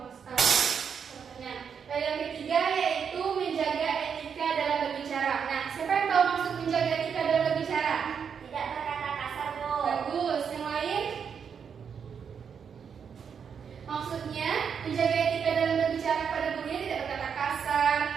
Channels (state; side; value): quieter; left; 7.0 dB